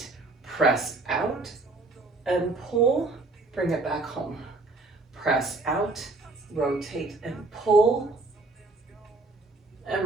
press out and pull, bring it back home. Press out, rotate and pull, and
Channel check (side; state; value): left; quieter; 3.3 dB